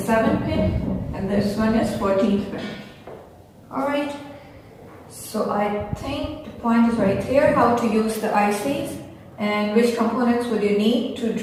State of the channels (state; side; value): identical; both; correlation 1.00